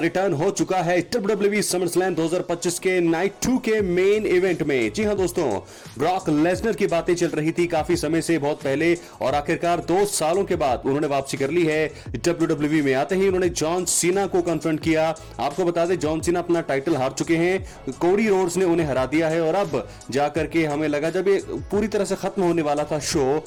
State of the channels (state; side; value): identical; both; correlation 1.00